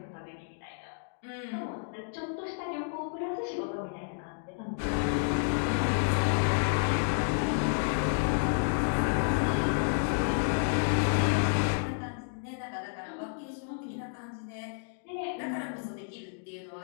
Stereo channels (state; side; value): silent; right; digital silence